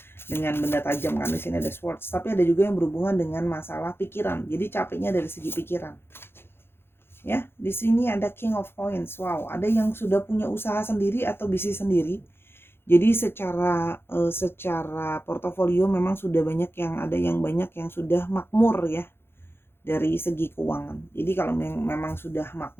dengan benda tajam kan. Di sini ada swords, tapi ada juga yang berhubungan dengan masalah pikiran. Jadi capeknya dari segi pikiran. Ya, di sini ada King of Coins. Wow, ada yang sudah punya usaha sendiri atau bisnis sendiri. Jadi secara portofolio memang sudah banyak yang ada, yang banyak yang sudah makmur ya dari segi keuangan. Jadi kalau memang sudah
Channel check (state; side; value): late; right; 0.11 ms